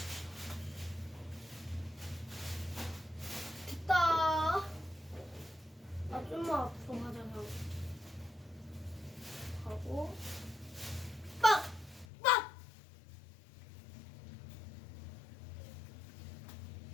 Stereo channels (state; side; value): drops out; right; at 12.1 s